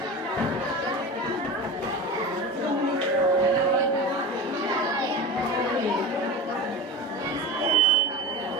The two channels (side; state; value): both; normal; correlation 0.27